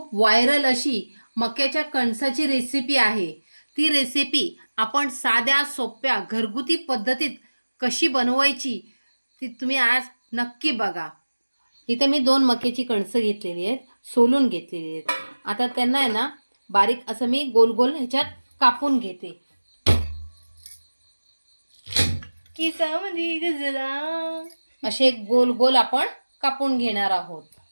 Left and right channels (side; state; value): both; inverted; correlation -1.00